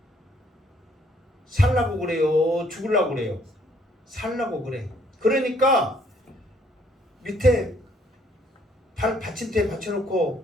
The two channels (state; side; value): normal; both; correlation 0.65